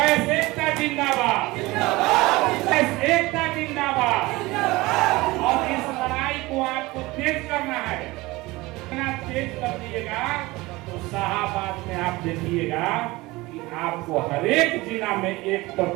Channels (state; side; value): quieter; left; 21.0 dB